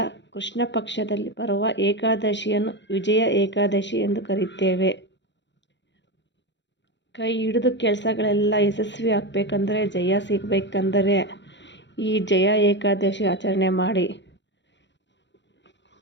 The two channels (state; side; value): late; right; 0.52 ms